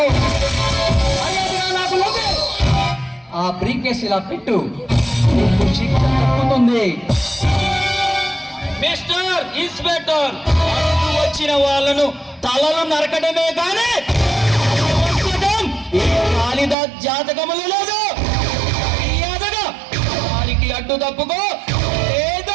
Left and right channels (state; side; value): drops out; left; at 16.8 s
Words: నాకు లోపే ఆ బ్రీఫ్ కేసు ఇలా పెట్టు, నీకు శిక్ష తప్పుతుంది. మిస్టర్ ఇన్స్పెక్టర్, వచ్చిన వాళ్ళను తలలు నరకడమే కానీ కాళిదాస్ జాతకములు లేదు. మర్యాదగా దారికి అడ్డు తప్పుకో,